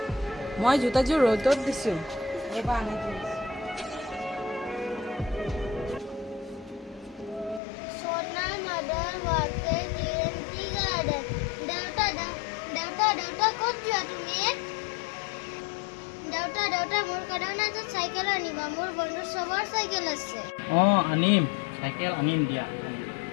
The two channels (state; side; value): drops out; right; at 7.6 s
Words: মই জোতাযোৰ ৰ'দত দিছোঁ। Sona mother worked in tea garden. Daughter, ক'ত যোৱা তুমি? Daughter, মোৰ কাৰণে এটা চাইকেল আনিবা। মোৰ বন্ধুৰ চবৰ চাইকেল আছে। অঁ আনিম, চাইকেল আনিম দিয়া।